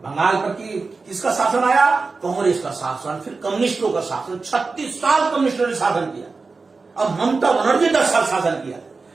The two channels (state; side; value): quieter; left; 4.2 dB